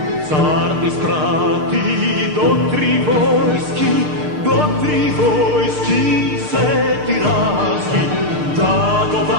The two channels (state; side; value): late; left; 6.6 ms